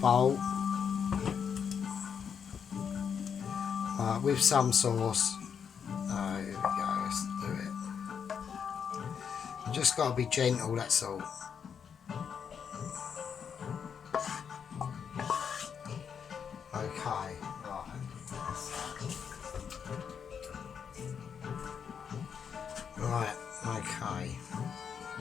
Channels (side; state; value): right; quieter; 7.2 dB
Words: with some sauce. There we go, let's do it. You just got to be gentle, that's all. Okay, right, okay.